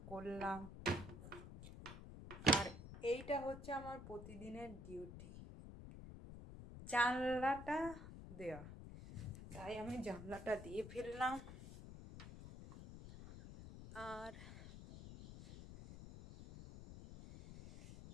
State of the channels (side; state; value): left; noise; rumble, 12 dB below the sound